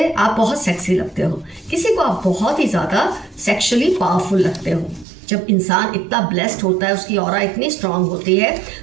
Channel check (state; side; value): drops out; left; at 5.1 s